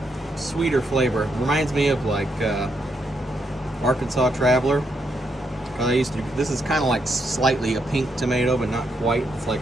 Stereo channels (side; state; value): both; normal; correlation 0.78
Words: sweeter flavor. Reminds me of like Arkansas Traveler. This is kind of like slightly a pink tomato, but not quite. It's like